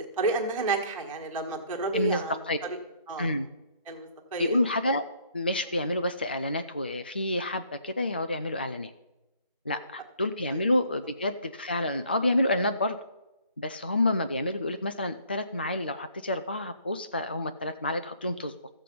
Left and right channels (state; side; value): inverted; both; correlation -0.61